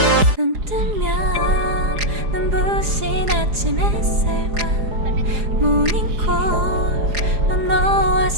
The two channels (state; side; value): late; left; 4.8 ms